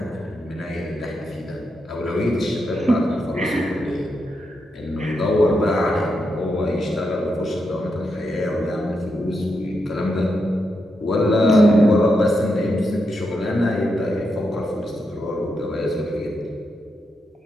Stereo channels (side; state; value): both; normal; correlation 0.84